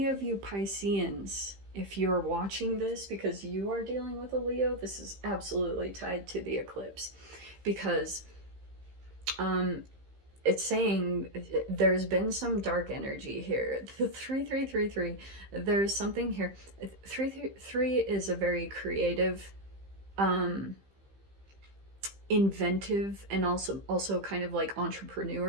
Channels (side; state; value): left; late; 15 ms